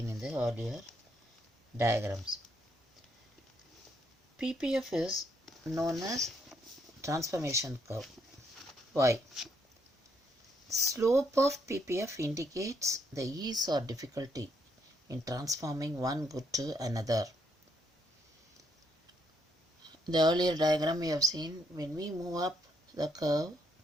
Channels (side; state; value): both; normal; correlation 0.74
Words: in the earlier diagrams. PPF is known as transformation curve. Why? Slope of PPF indicates the ease or difficulty in transforming one good to another. The earlier diagram we have seen, when we move up the curve,